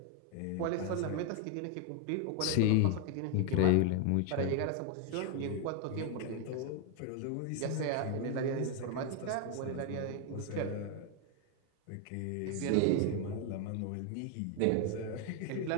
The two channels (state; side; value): different; both; correlation 0.01